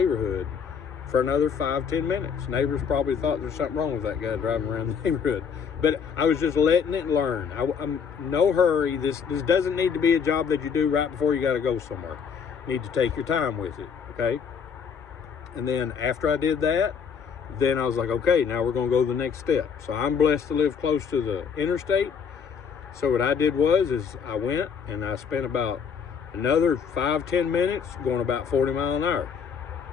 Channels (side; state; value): right; quieter; 6.6 dB